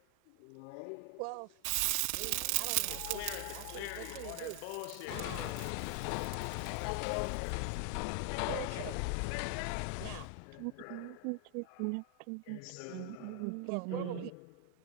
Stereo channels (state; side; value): different; both; correlation 0.00